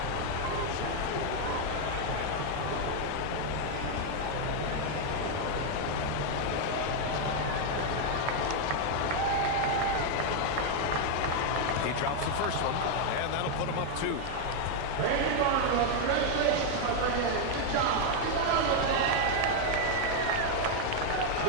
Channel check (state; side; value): different; both; correlation 0.00